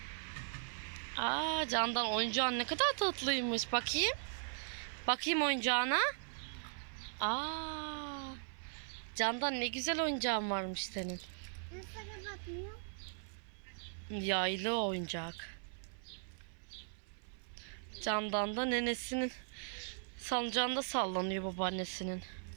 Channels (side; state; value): left; silent; 52 dB below the other